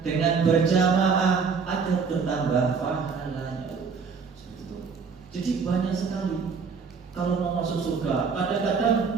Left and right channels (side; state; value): left; quieter; 5.4 dB